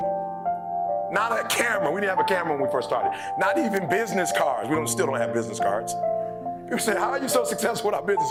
not a camera. We didn't have a camera when we first started. Not even business cards. We still don't have business cards. People say, how are you so successful without business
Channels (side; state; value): both; identical; correlation 1.00